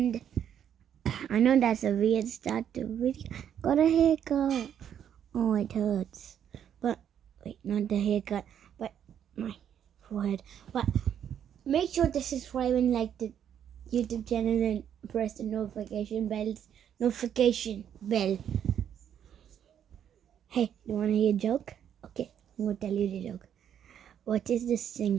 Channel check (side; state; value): left; quieter; 9.3 dB